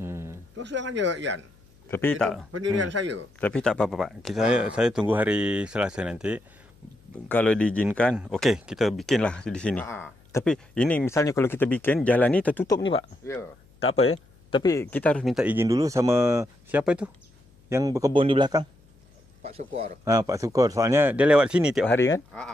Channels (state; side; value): noise; left; hum, 30 dB below the sound